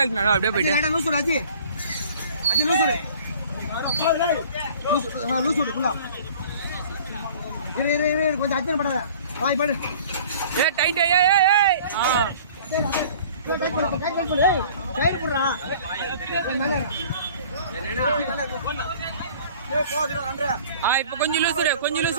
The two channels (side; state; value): both; inverted; correlation -0.48